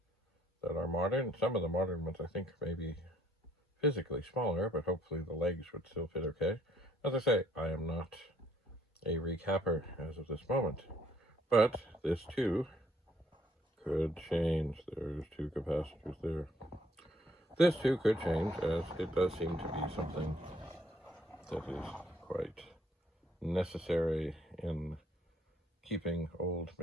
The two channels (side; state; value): both; normal; correlation 0.66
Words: that are modern. Some of the modern ones I think may be physically smaller, but hopefully the legs would still fit okay. As I say, I am not a recapper as of this moment, but this too could change. There's 2 capacitors there. This too could change, as it does seem to be something that is quite necessary in keeping old